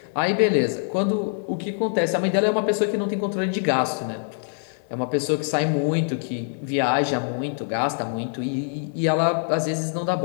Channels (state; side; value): silent; right; 63 dB below the other